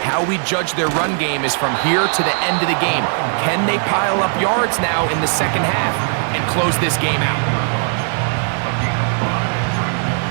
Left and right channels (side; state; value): left; silent; 58 dB below the other